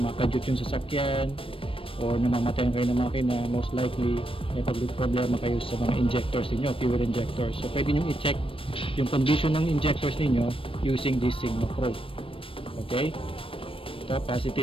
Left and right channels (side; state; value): right; late; 0.26 ms